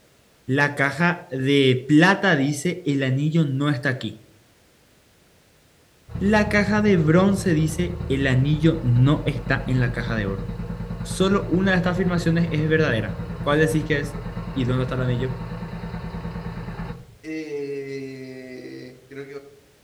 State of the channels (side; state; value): both; identical; correlation 1.00